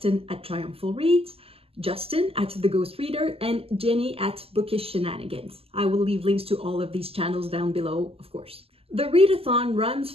at Triumphal Reads, Justin at The Ghost Reader, and Jenny at Bookish Shenanigans. I will leave links to all of these channels down below, of course. The readathon runs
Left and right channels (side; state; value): left; late; 0.28 ms